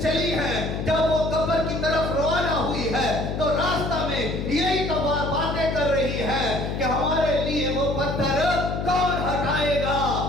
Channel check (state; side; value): noise; left; hum, 3 dB below the sound